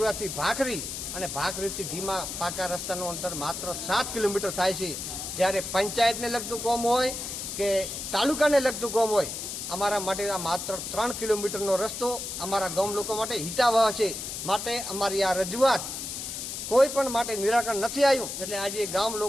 ભાખરી અને ભાખરીથી ધીમા પાકા રસ્તાનું અંતર માત્ર 7 કિલોમીટર થાય છે. જ્યારે પંચાયતને લગતું કામ હોય કે તાલુકાને લગતું કામ હોય, અમારા માટે આ માત્ર 3 કિલોમીટરનો રસ્તો અમારા ગામ લોકો માટે હિતાવહ છે. માટે અમારી આ રજૂઆત કોઈ પણ માટે નિરાકરણ નથી આવ્યું. એટલે આજે ગામ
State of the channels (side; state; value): left; noise; hiss, 6 dB below the sound